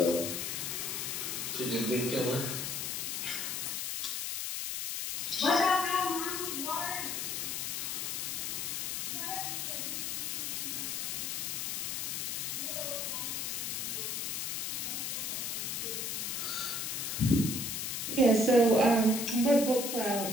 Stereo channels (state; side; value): noise; left; hiss, 2 dB below the sound